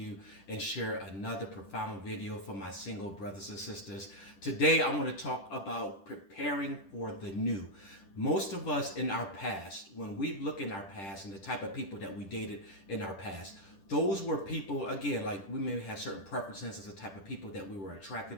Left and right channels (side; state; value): right; late; 10 ms